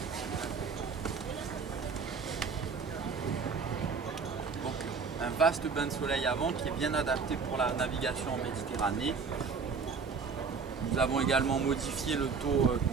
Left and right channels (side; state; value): left; quieter; 5.3 dB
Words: Donc un vaste bain de soleil avant qui est bien adapté pour la navigation en Méditerranée. Nous avons également modifié le taux